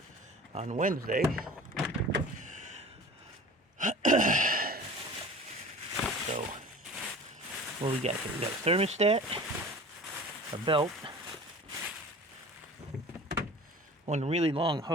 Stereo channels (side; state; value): both; normal; correlation 0.41